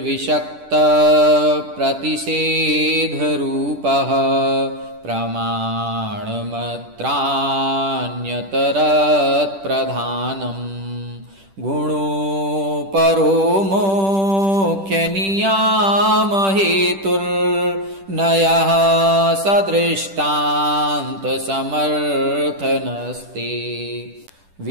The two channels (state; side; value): late; left; 10 ms